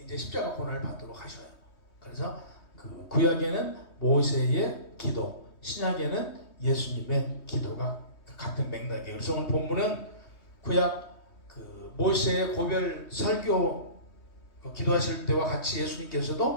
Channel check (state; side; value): late; right; 3.2 ms